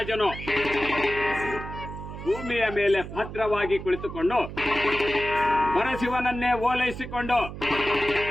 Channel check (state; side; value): noise; right; hum, 10 dB below the sound